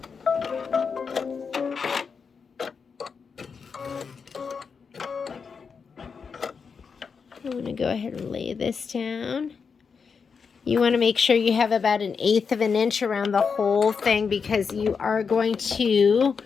I'm going to go ahead and lay this down. You want to make sure you have about 1/8 of an inch around the whole thing because you are going to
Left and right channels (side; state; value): right; quieter; 5.7 dB